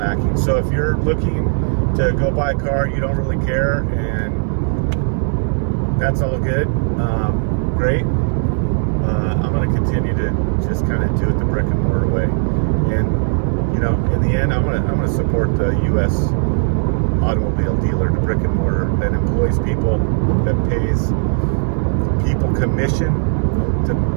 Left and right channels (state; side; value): silent; left; 65 dB below the other